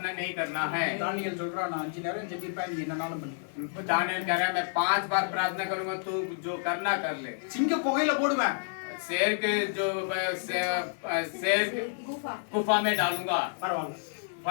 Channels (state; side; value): silent; right; digital silence